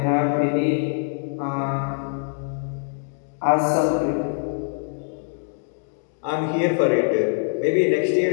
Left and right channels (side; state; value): right; silent; 58 dB below the other